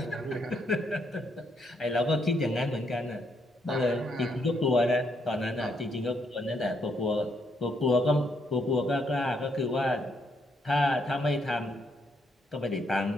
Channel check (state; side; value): normal; both; correlation 0.75